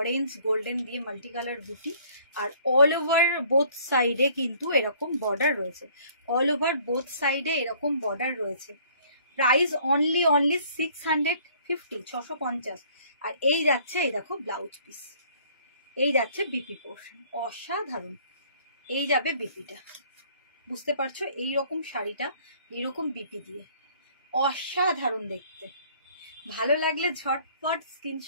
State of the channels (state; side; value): inverted; both; correlation -0.57